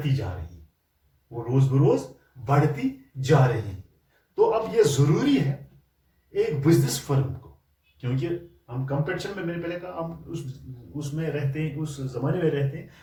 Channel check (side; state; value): both; identical; correlation 1.00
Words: जा रही हैं. तो अब ये जरूरी है एक बिजनेस फर्म को, क्योंकि हम कंपटीशन में मैंने पहले कहा हम उसमें रहते हैं उस जमाने में रहते हैं